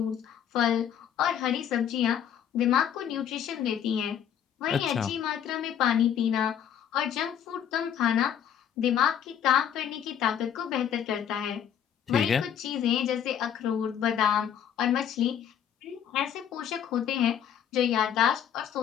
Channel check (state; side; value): quieter; right; 9.1 dB